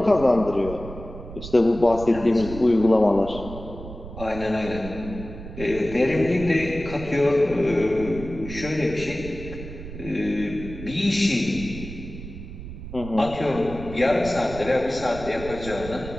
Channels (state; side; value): noise; right; rumble, 12 dB below the sound